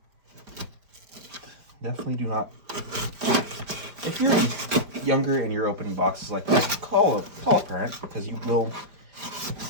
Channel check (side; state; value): left; late; 5.0 ms